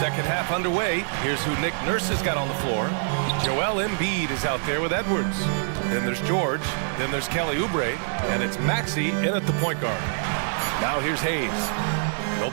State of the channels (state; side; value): silent; left; digital silence